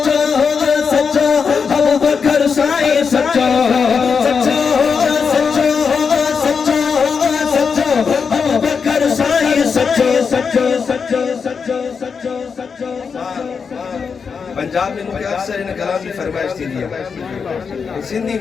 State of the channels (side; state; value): right; quieter; 5.8 dB